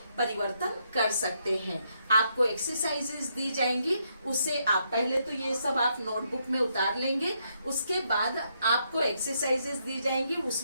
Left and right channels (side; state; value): both; inverted; correlation -0.76